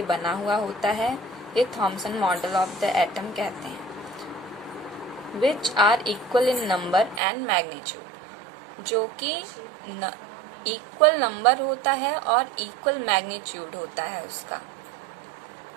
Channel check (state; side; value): drops out; left; at 7.2 s